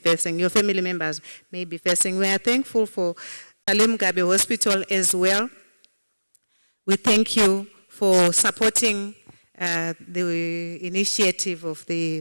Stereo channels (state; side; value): inverted; both; correlation -1.00